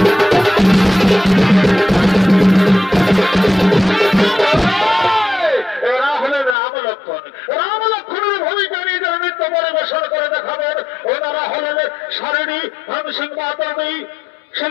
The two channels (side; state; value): right; drops out; at 6.6 s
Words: রাম লক্ষ্মণের ভূমিকা নিয়ে যারা নৃত্য পরিবেশন করে দেখাবেন ওনারা হলেন সারিণী ধনসিংহ মাতাবী